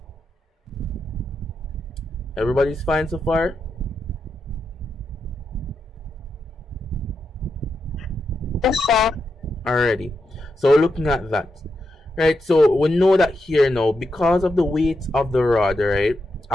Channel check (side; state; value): both; normal; correlation 0.85